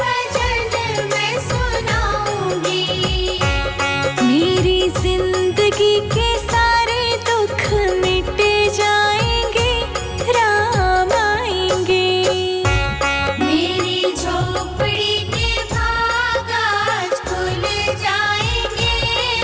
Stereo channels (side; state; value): both; identical; correlation 1.00